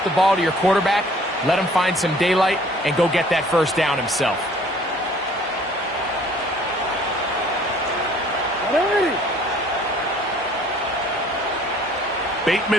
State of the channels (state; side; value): normal; both; correlation 0.55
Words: the ball to your quarterback, let him find some daylight, and go get that 1st down himself.